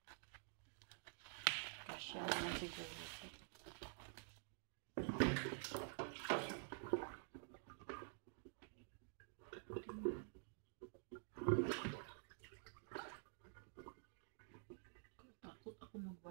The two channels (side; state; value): left; silent; digital silence